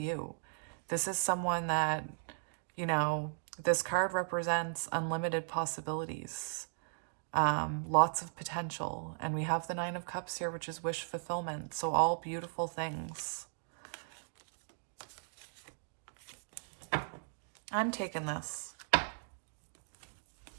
This is someone that, you know, this card represents unlimited possibilities, lots of potential. And we have the Nine of Cups here, which is wish fulfillment. So all beautiful things. I'm taking this.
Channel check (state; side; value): silent; left; digital silence